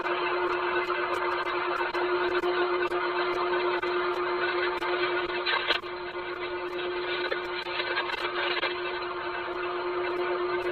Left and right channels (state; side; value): noise; right; rumble, 21 dB below the sound